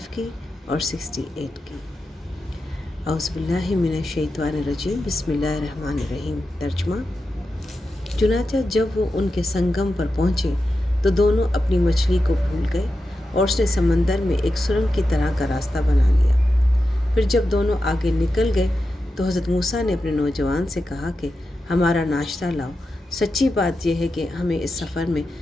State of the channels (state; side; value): normal; both; correlation 0.90